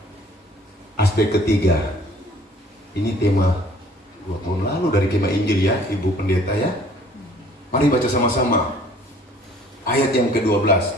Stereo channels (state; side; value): normal; both; correlation 0.54